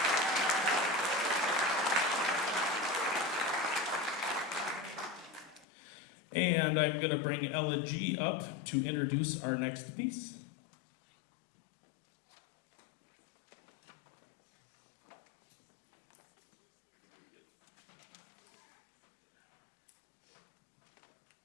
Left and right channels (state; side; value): drops out; right; at 5.7 s